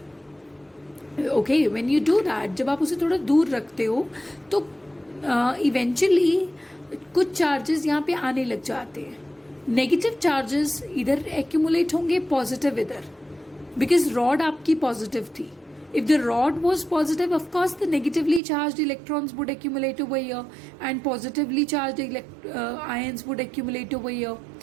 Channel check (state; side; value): drops out; left; at 18.4 s